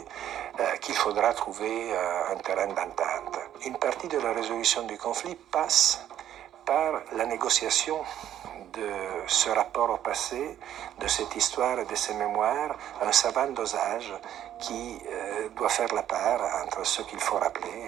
qu'il faudra trouver un terrain d'entente. Une partie de la résolution du conflit passe par la négociation de ce rapport au passé, de cette histoire et de ces mémoires, un savant dosage qui doit faire la part entre ce qu'il faut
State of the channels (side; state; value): left; quieter; 11.1 dB